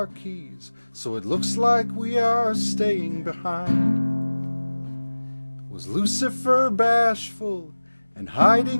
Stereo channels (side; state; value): both; inverted; correlation -1.00